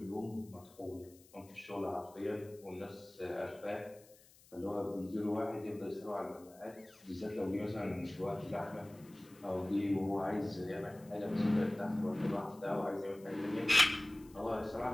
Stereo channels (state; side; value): noise; left; hiss, 25 dB below the sound